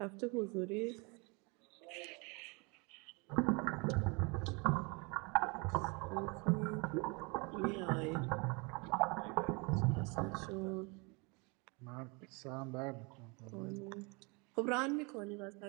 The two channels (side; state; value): left; quieter; 30.1 dB